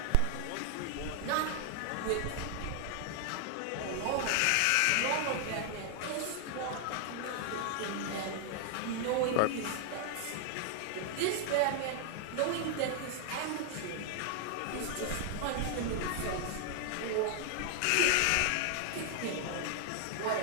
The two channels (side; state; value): both; different; correlation 0.00